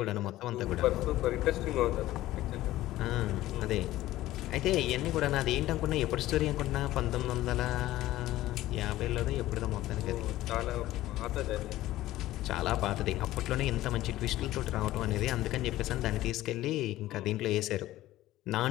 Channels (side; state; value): right; quieter; 15.5 dB